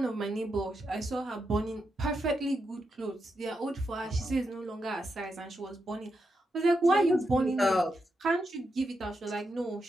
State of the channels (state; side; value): normal; both; correlation 0.85